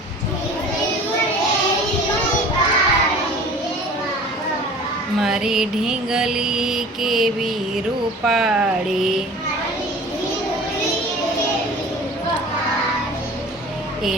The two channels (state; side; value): normal; both; correlation 0.43